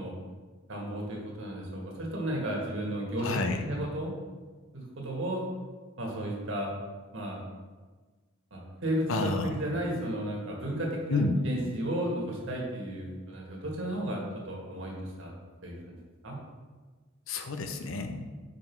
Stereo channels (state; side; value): normal; both; correlation 0.49